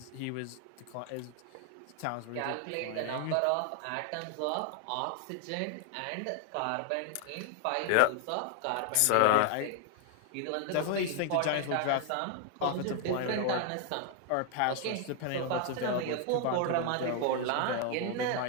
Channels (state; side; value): different; both; correlation 0.01